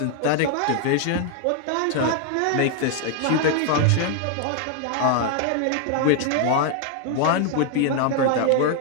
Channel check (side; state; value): both; different; correlation 0.00